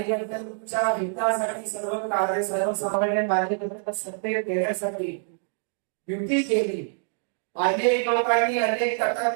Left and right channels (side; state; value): left; silent; digital silence